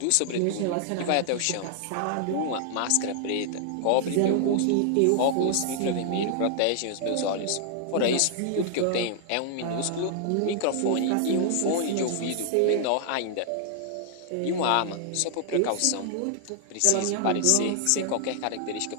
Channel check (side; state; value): both; different; correlation -0.01